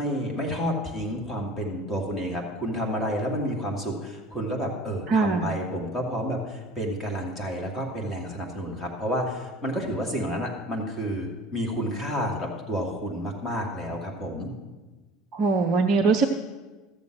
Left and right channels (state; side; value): normal; both; correlation 0.45